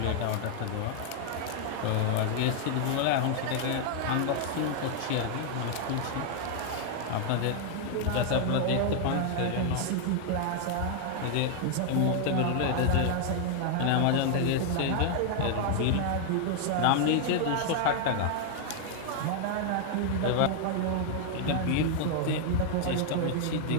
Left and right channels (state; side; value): different; both; correlation 0.00